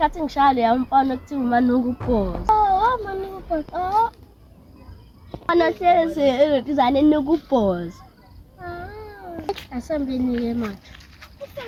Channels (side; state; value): both; identical; correlation 1.00